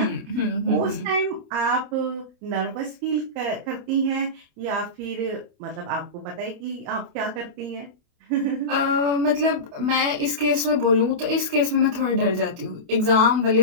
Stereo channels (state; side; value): late; left; 28 ms